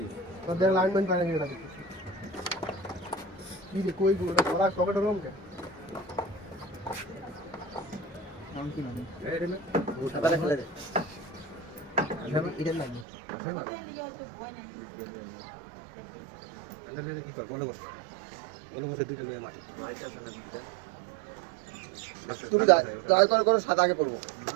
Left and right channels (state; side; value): drops out; left; at 13.1 s